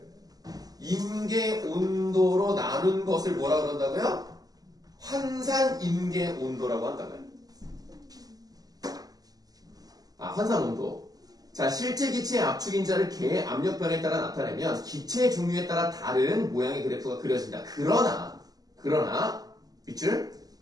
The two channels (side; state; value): left; late; 0.18 ms